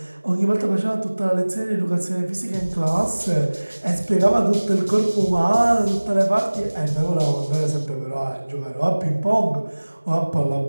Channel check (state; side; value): inverted; both; correlation -1.00